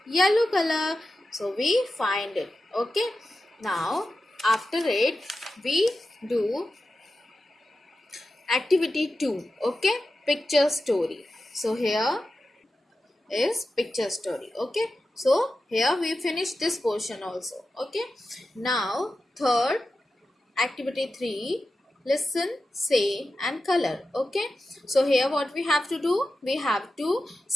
yellow color. So we find it. Okay. Now after it we do activity 2. Okay. Picture story. So here is picture story. Okay. So here we finish this portion also. Okay. Now third activity 3, listen, say and color. Okay. So here what we have to do, we have to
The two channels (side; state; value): both; normal; correlation 0.92